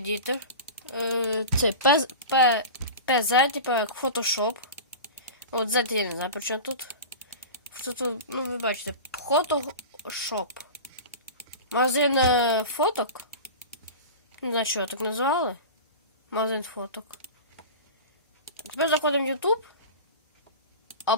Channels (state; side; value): inverted; both; correlation -0.31